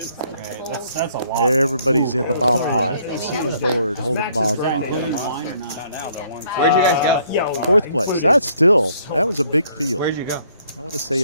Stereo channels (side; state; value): both; inverted; correlation -0.65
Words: That's a lot. Everybody's in the bomb pot. A single board holding bomb pot. Including wine or not? Where'd you guys go? 4th place. That was a big field. Where'd you go? I want to say